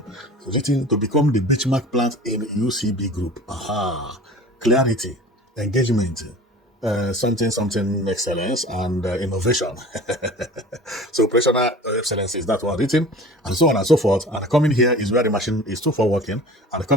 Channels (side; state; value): both; normal; correlation 0.41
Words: written to become the benchmark plant in UCB group. Clarity, engagement, something excellence, and innovation. So operational excellence is that one written, and so on and so forth. And coming here is where the machine is for working, and